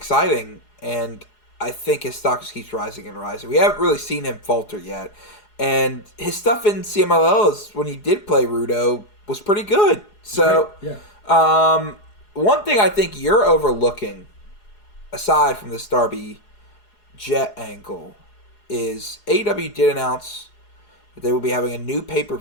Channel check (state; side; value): late; right; 4.8 ms